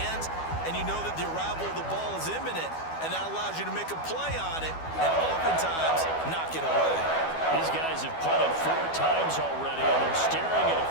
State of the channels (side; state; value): right; late; 12 ms